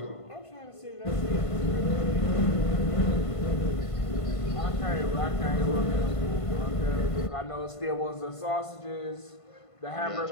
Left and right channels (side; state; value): right; late; 1.5 ms